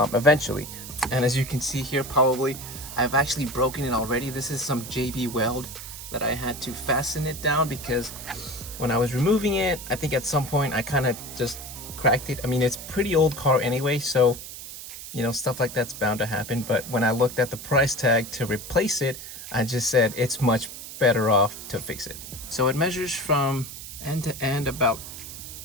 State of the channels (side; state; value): right; noise; hiss, 11 dB below the sound